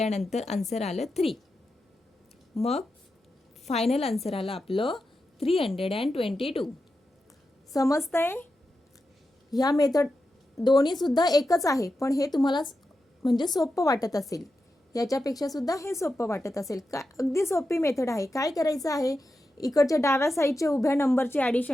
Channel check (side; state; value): both; normal; correlation 0.90